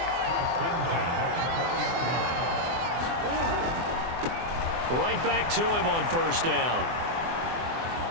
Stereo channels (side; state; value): left; late; 24 ms